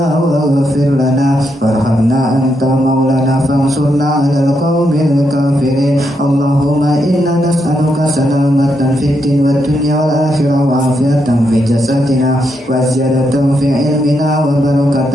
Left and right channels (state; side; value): normal; both; correlation 0.81